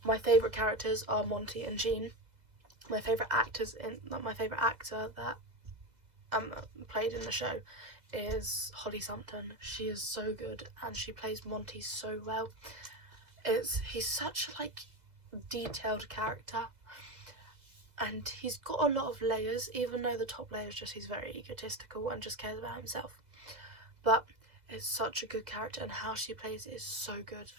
My favourite characters are Monty and Jean. My favourite actor that played in the show is Holly Sumpton. She is so good, and she plays Monty so well. He's such a like detailed character, and he's got a lot of layers, even though the top layer is just he's very egotistical and just cares about himself. But it's such a good character, and how she plays it is so good,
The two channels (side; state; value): left; late; 2.0 ms